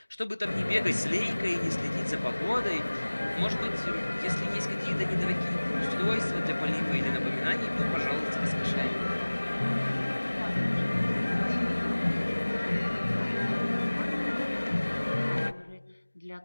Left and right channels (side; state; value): both; inverted; correlation -1.00